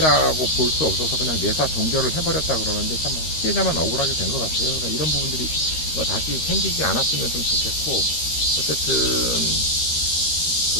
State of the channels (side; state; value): right; late; 13 ms